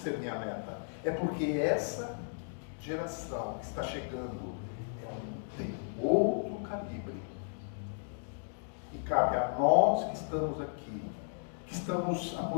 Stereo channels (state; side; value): silent; right; digital silence